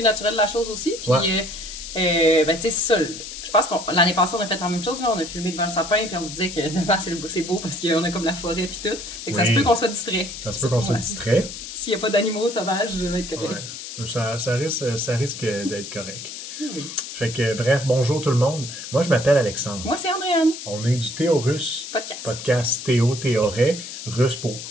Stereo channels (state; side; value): noise; left; hiss, 10 dB below the sound